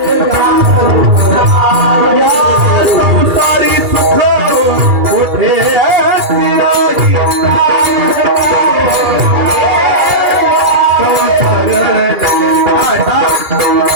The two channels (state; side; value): late; left; 2.4 ms